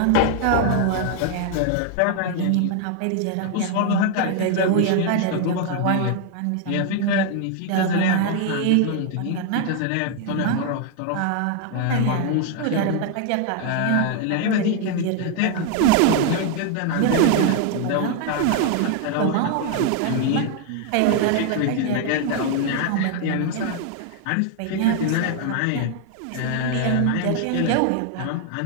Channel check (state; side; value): different; both; correlation 0.00